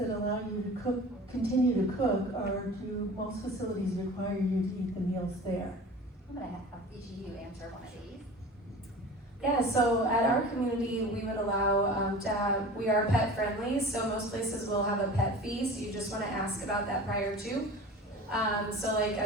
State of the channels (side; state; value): both; normal; correlation 0.38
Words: allow you to continue to cook, or do most facilities require you to eat the meals there? I'm gonna have each of you answer one of these. Yeah, so at our community, we would allow we are pet friendly, so most places will have a pet fee, so you just wanna ask about that prior to. So like